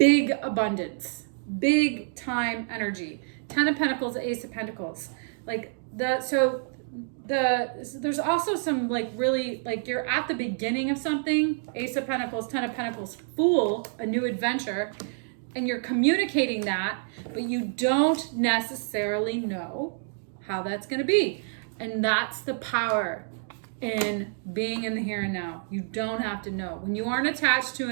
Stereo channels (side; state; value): left; silent; 60 dB below the other